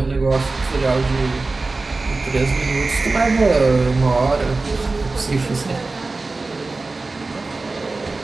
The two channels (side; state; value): left; quieter; 3.5 dB